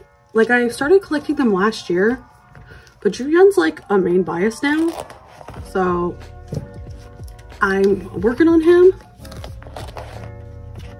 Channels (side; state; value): both; identical; correlation 1.00